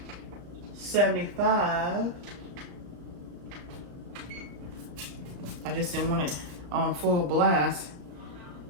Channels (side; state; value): left; late; 34 ms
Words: I just didn't want it on full blast